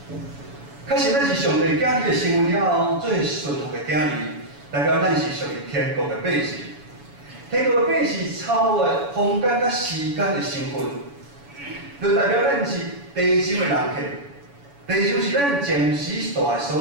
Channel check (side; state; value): left; late; 7.1 ms